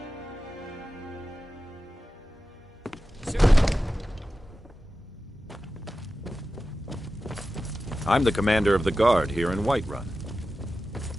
I'm the commander of the guard here in Whiterun.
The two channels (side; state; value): both; normal; correlation 0.93